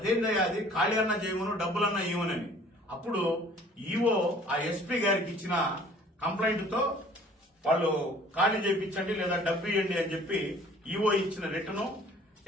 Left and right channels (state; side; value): normal; both; correlation 0.53